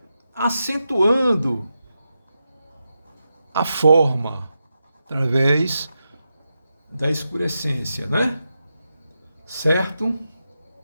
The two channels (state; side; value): inverted; both; correlation -0.88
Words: acentuando a forma através da escurecência, né? Certo?